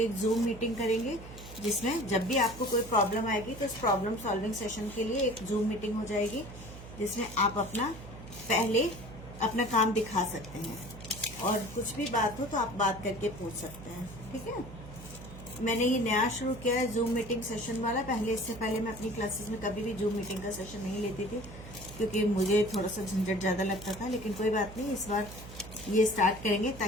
एक जूम मीटिंग करेंगे, जिसमें जब भी आपको कोई प्रॉब्लम आएगी तो इस प्रॉब्लम सॉल्विंग सेशन के लिए एक जूम मीटिंग हो जाएगी, जिसमें आप पहले अपना काम दिखा सकते हैं और कुछ भी बात हो तो आप बात करके पूछ सकते हैं। ठीक है, मैंने ये नया शुरू किया है जूम मीटिंग सेशन वाला। इससे पहले मैं अपनी क्लासेस में कभी भी जूम मीटिंग का सेशन नहीं लेती थी, क्योंकि मुझे थोड़ा सा झंझट ज्यादा लगता था। लेकिन कोई बात नहीं, इस बार ये स्टार्ट करेंगे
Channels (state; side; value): noise; right; hum, 14 dB below the sound